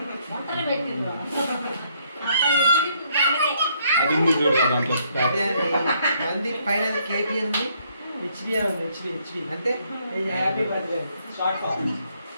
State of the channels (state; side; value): inverted; both; correlation -0.69